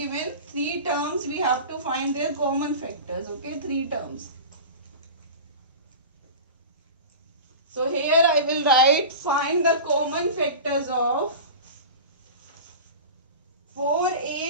3 terms, we have to find their common factors. Okay, 3 terms. So here I will write find the common factors of 4,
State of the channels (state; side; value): inverted; both; correlation -0.32